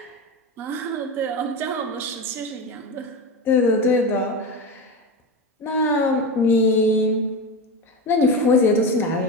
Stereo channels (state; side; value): normal; both; correlation 0.20